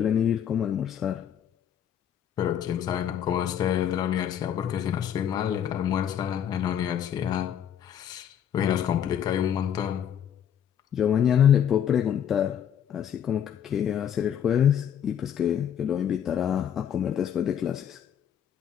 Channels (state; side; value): quieter; right; 9.3 dB